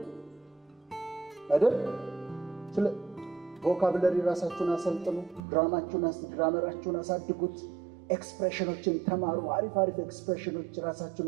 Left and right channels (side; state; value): left; drops out; at 5.4 s